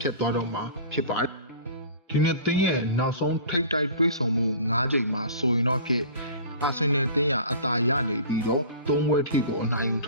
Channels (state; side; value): inverted; both; correlation -0.41